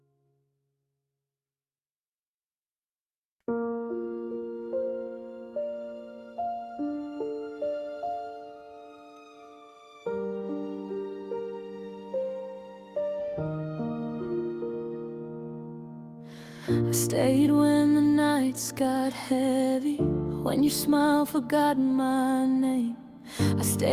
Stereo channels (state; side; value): identical; both; correlation 1.00